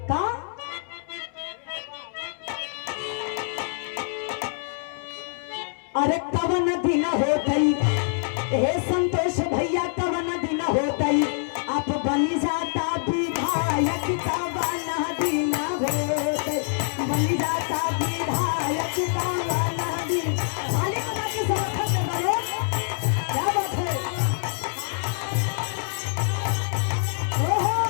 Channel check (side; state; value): right; silent; 61 dB below the other